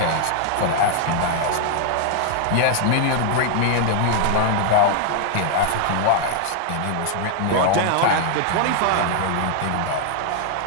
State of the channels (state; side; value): different; both; correlation 0.00